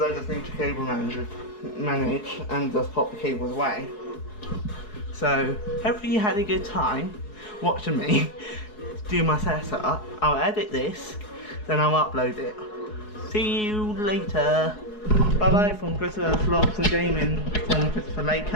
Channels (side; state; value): right; late; 4.7 ms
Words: I just need to cable manage and just pop the cables away. So hopefully you had a good time watching me do my setup. I'll edit this, then I'll upload it. See you later. Bye bye from Christopher Vlogs and Gaming from Christopher